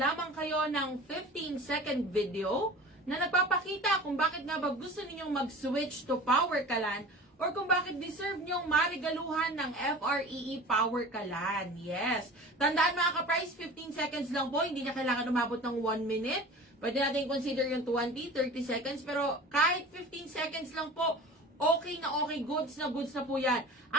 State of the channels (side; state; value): both; normal; correlation 0.38